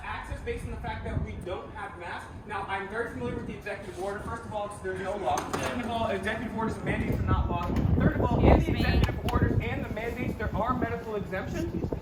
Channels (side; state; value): both; identical; correlation 1.00